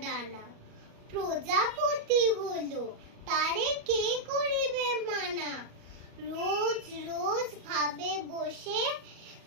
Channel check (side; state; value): left; late; 38 ms